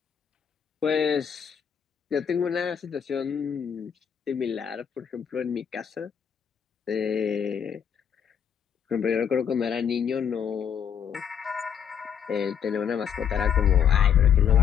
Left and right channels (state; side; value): quieter; right; 8.1 dB